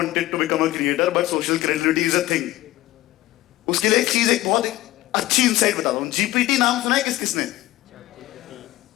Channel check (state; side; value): quieter; right; 16.5 dB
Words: to become a creator, but social credibility is a thing. उसके लिए एक बहुत अच्छी इंसाइट बताता हूँ। जीपीटी नाम सुना है किसने?